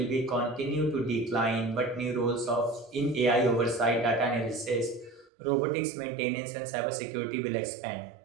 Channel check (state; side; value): drops out; left; at 5.3 s